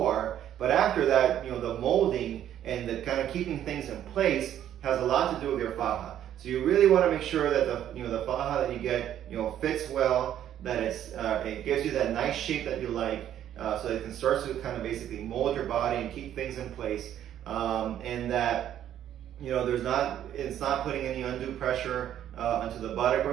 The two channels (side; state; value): left; quieter; 10.9 dB